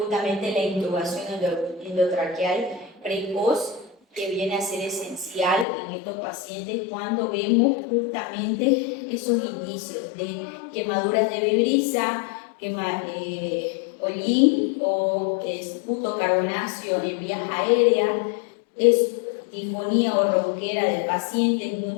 la intubación endotraqueal precoz, que viene a ser esencial en estos pacientes cuando vemos justamente esos indicios de quemaduras de vibrisa, hollín o esputo carbonáceo en vías aéreas, disfonía o ronquera del paciente,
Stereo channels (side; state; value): right; drops out; at 5.7 s